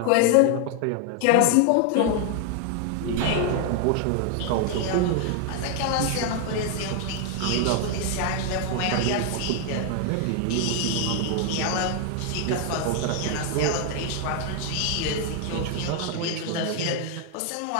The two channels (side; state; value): both; different; correlation 0.00